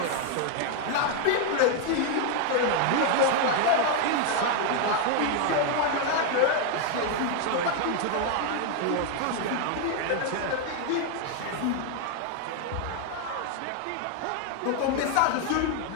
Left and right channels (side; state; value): both; different; correlation 0.01